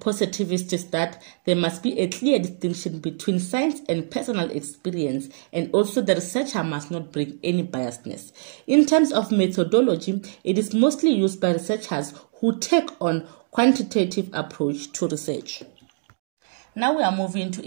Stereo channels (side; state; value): left; silent; digital silence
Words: is that there must be a clear distinction between science and personal experience, and also the researcher must not bring any biasness. In terms of methodology, it is mostly used by researchers who take on quantitative approach to research. Now we are moving to